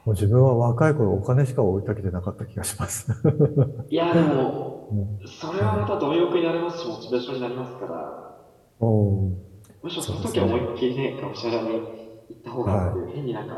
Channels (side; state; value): both; identical; correlation 1.00